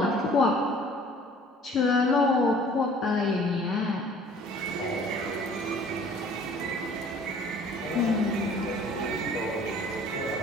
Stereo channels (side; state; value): both; normal; correlation 0.52